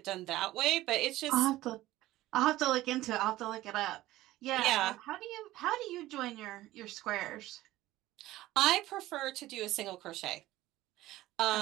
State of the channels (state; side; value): quieter; left; 16.3 dB